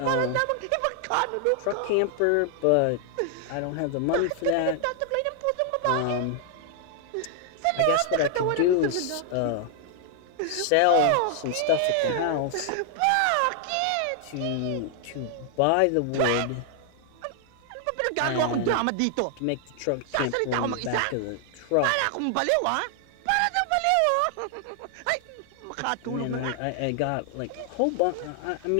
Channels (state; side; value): different; both; correlation 0.00